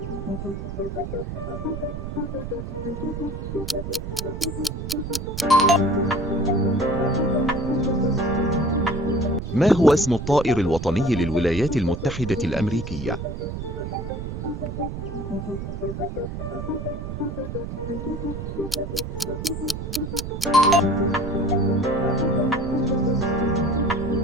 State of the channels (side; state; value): right; noise; rumble, 6 dB below the sound